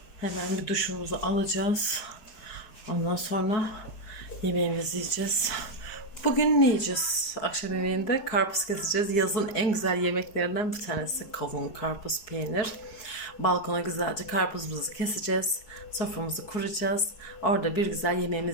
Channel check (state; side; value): late; right; 4.7 ms